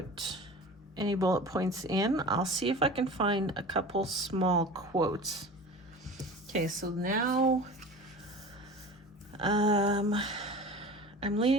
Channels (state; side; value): normal; both; correlation 0.36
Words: any bullet points in. I'll see if I can find a couple small quotes. Okay, so now I'm